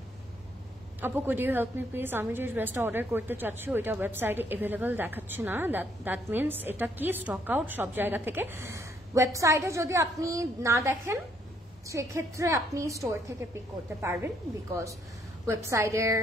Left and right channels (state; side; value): normal; both; correlation 0.69